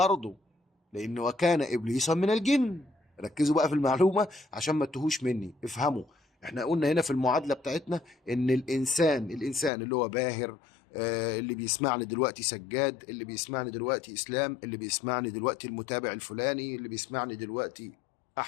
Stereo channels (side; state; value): right; drops out; at 9.7 s